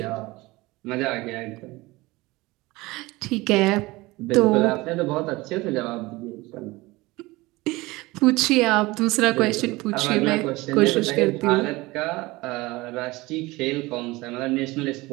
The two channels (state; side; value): quieter; left; 21.3 dB